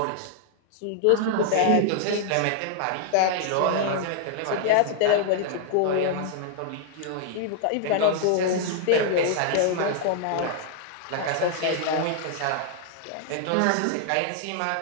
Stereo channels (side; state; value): both; different; correlation 0.00